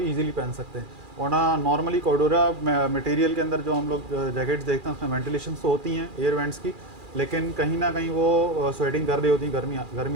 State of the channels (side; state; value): left; late; 2.4 ms